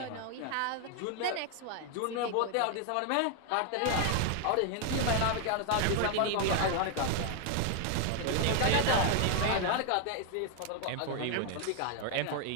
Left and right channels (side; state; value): both; different; correlation 0.01